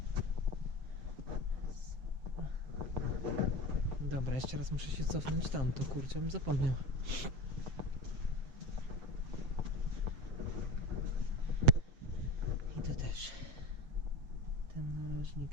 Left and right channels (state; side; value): late; left; 7.4 ms